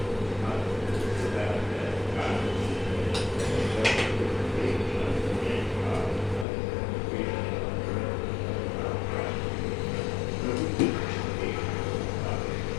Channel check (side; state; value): right; drops out; at 6.5 s